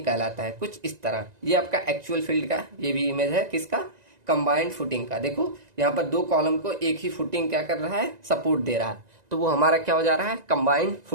कहलाता है। कुछ इस तरह ये आपका एक्चुअल फील्ड का ये भी इमेज है, किसका, कंबाइंड फुटिंग का। देखो यहाँ पर दो कॉलम को एक ही फुटिंग क्या कर रहा है, सपोर्ट दे रहा है, तो वो हमारा क्या हो जा रहा है, कंबाइंड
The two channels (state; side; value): late; left; 1.9 ms